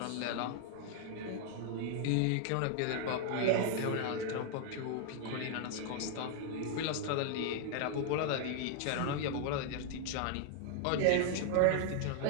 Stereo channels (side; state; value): both; different; correlation 0.00